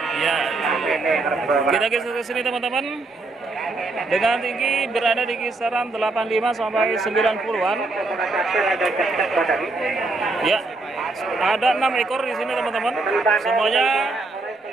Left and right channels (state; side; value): quieter; left; 3.3 dB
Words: Ya, kita geser ke sini teman-teman. Dengan tinggi berada di kisaran 85 sampai 90-an. Ya, ada 6 ekor di sini teman-teman. Semuanya